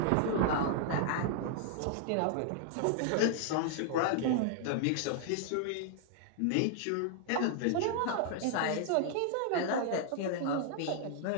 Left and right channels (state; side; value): different; both; correlation -0.01